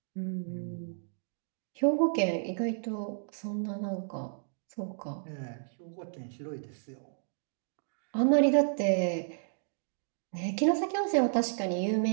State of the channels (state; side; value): silent; left; digital silence